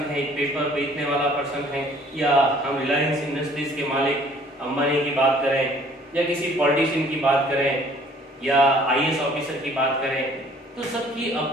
है, एक पेपर बेचने वाला पर्सन है, या हम रिलायंस इंडस्ट्रीज के मालिक अंबानी की बात करें, या किसी पॉलिटिशियन की बात करें, या आईएएस ऑफिसर की बात करें, तो सबकी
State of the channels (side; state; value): both; normal; correlation 0.56